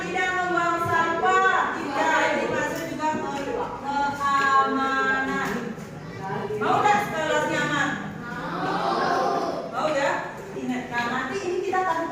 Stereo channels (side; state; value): both; identical; correlation 1.00